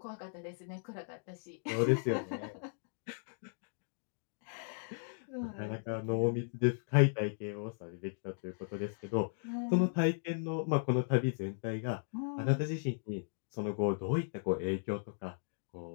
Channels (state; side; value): silent; right; digital silence